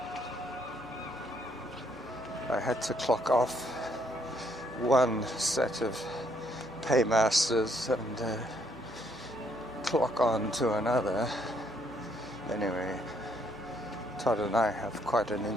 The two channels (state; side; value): noise; left; hum, 24 dB below the sound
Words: I had to clock off one set of paymasters and clock on to another. Anyway, Todd and I have quite an